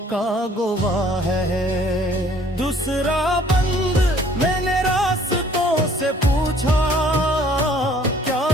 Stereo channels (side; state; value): both; normal; correlation 0.57